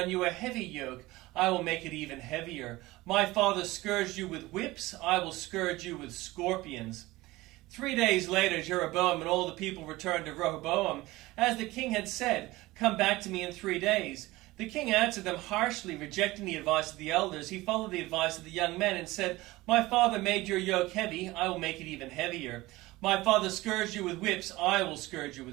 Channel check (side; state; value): left; quieter; 19.4 dB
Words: you a heavy yoke. I will make it even heavier. My father scourged you with whips. I will scourge you with scorpions." 3 days later, Jeroboam and all the people returned to Rehoboam. As the king had said, "Come back to me in 3 days." The king answered them harshly, rejecting the advice of the elders. He followed the advice of the young men and said, "My father made your yoke heavy. I will make it even heavier. My father scourged you with whips. I will scourge you